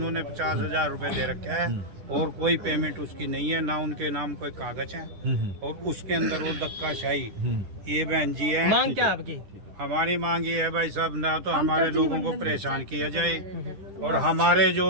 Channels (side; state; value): left; late; 10 ms